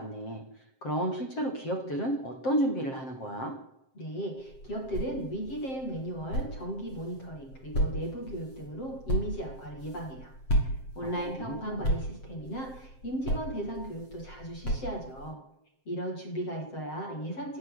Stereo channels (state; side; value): late; right; 7.6 ms